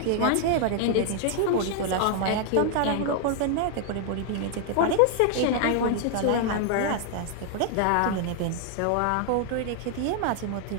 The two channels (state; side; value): different; both; correlation 0.00